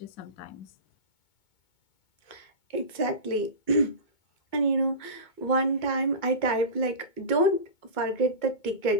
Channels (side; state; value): right; late; 2.2 ms